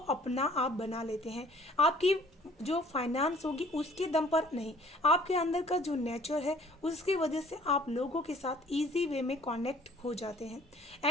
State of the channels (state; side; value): normal; both; correlation 0.55